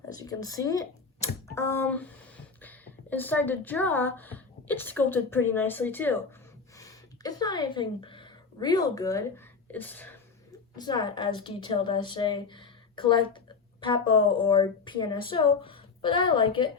As you can see, inside the jaw, it's sculpted pretty nicely too. It's not anything real good. It's not as detailed as, say, CollectA or PNSO, but I like it.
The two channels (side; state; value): right; quieter; 4.9 dB